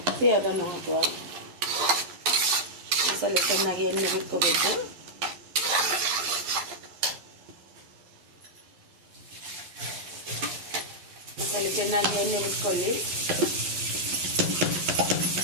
ಅದನ್ನು ಹಾಕುವ. ಮಸಾಲೆ ಚೆನ್ನಾಗಿ ಎಣ್ಣೆ ಬಿಟ್ಕೋಬೇಕು. ಮಸಾಲೆ ಚೆನ್ನಾಗಿ ಎಣ್ಣೆ ಬಿಟ್ಕೊಳ್ಳಿ.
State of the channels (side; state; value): left; late; 11 ms